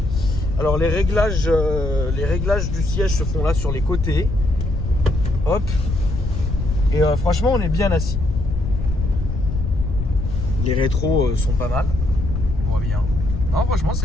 Alors les réglages du siège se font là sur les côtés. Hop. Et franchement, on est bien assis. Les rétros sont pas mal. On voit bien. Non, franchement,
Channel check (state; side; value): noise; left; rumble, 3 dB below the sound